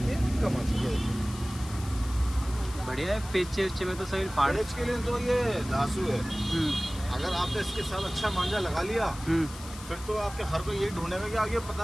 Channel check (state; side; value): noise; left; hiss, 15 dB below the sound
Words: कमान, ये देखिए। बढ़िया है। पेचे वेचे में तो सभी फाड़। पेच के लिए तो ये धासु है। अगर आपने इसके साथ अच्छा मांझा लगा लिया फिर तो आपके हर कोई यही ढूंढेगा कि आगे